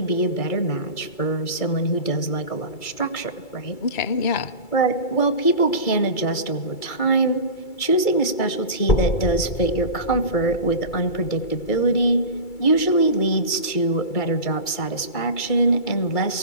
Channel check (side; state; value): right; late; 2.3 ms